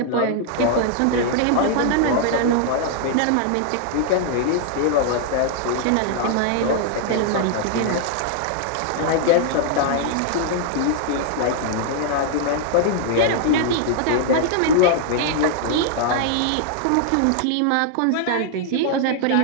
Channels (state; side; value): different; both; correlation -0.01